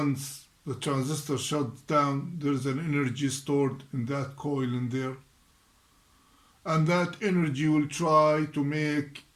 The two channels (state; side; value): identical; both; correlation 1.00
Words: the transistor shuts down, there's an energy stored in that coil in there, and that energy will try to make